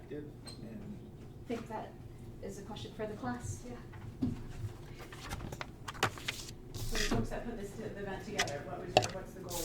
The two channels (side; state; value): both; identical; correlation 1.00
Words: I think that is a question for the class. Yeah. So the folks that put this event together, what's the goal